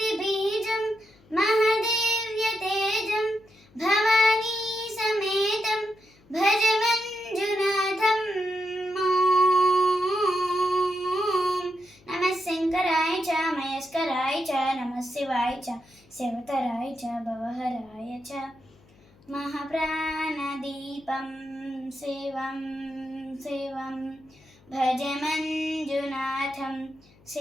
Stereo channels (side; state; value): left; noise; hum, 29 dB below the sound